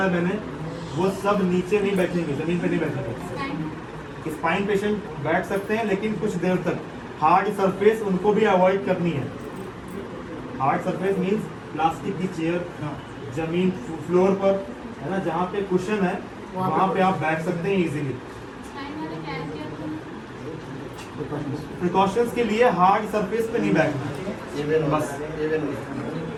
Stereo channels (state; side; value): identical; both; correlation 1.00